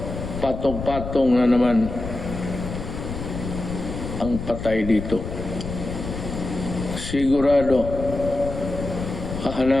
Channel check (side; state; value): left; noise; rumble, 7 dB below the sound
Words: patong-patong na naman ang patay dito. Sigurado,